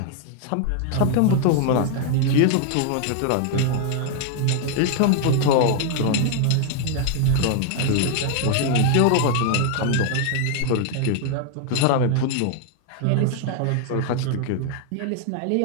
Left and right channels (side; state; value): both; different; correlation 0.00